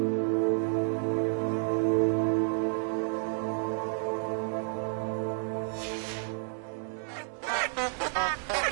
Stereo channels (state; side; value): silent; left; digital silence